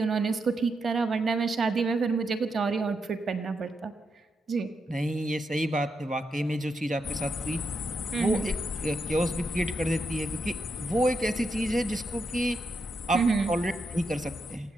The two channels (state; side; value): normal; both; correlation 0.83